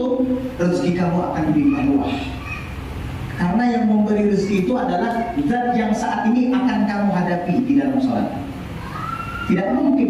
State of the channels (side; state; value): both; identical; correlation 1.00